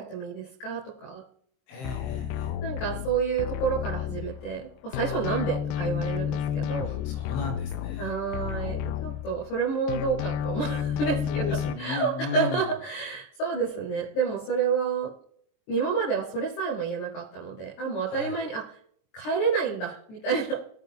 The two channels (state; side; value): late; right; 23 ms